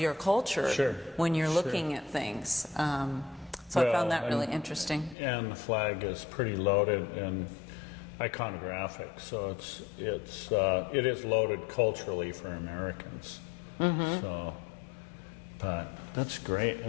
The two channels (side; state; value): right; drops out; at 5.2 s